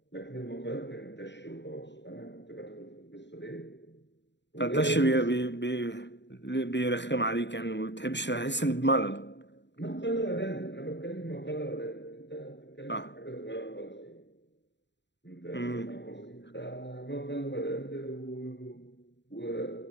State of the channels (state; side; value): late; right; 0.52 ms